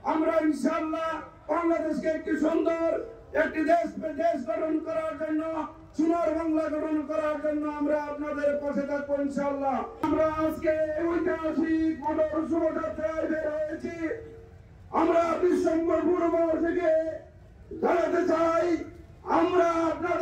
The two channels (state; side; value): identical; both; correlation 1.00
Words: আমরা ইনশাআল্লাহ বাংলাদেশকে একটি সুন্দর একটি দেশ গঠন করার জন্য, সোনার বাংলা গঠন করার জন্য আমরা আপনাদের পাশে থাকবো ইনশাআল্লাহ। আমরা আজকে ঐতিহাসিক মোটর শোভাযাত্রায় বের হয়েছি। আমরা ডিসেম্বর পূর্ববাস থেকে জানাতে চাই আমরা